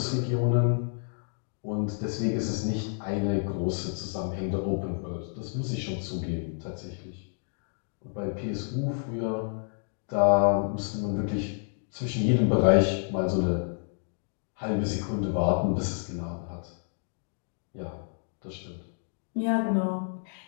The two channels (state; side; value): silent; right; 58 dB below the other